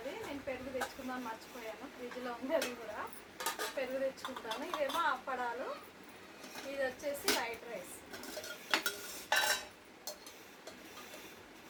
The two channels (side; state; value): both; identical; correlation 1.00